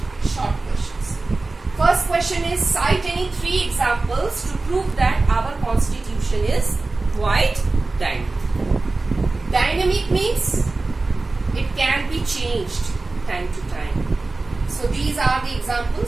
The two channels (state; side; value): quieter; left; 3.4 dB